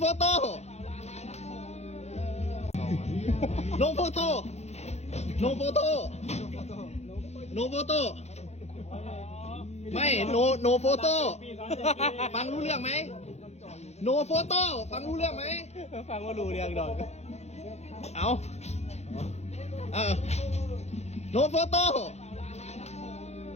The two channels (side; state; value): right; late; 0.31 ms